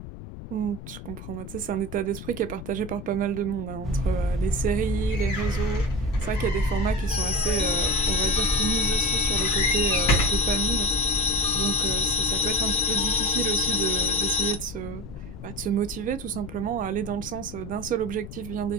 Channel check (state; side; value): noise; left; rumble, 12 dB below the sound